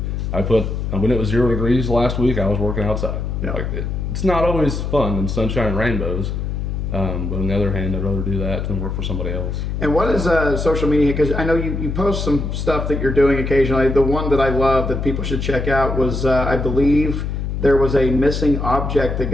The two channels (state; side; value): noise; left; hum, 3 dB below the sound